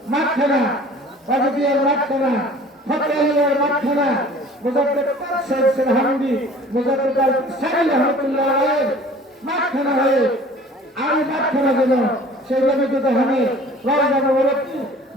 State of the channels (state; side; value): normal; both; correlation 0.48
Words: মাঠখানা, ওয়াজিদিয়ার মাঠখানা, ফতেহিয়ার মাঠখানা, মুজাদ্দিদ সাইদ সিরহান্দি, মুজাদ্দিদ আল সাইল রহমাতুল্লাহ আলাইহি মাঠখানা হয়ে আমি মাঠখানা যেন সেই নবীকে দেখানে রওজা মুবারক